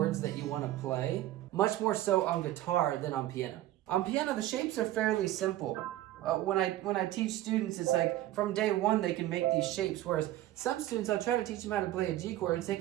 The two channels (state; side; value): quieter; left; 14.6 dB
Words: that you want to play, much more so on guitar than on piano. On piano, the shapes are fairly simple. When I teach students, it's like from day 1 they can make these shapes, whereas some students, I'll try to teach them how to play a G chord and take